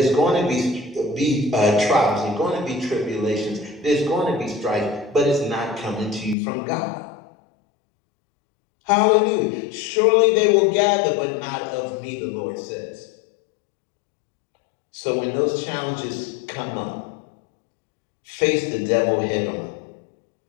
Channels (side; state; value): right; drops out; at 6.4 s